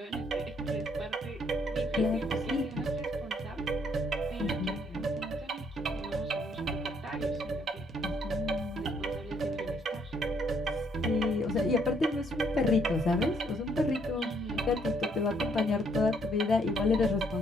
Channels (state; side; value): normal; both; correlation 0.69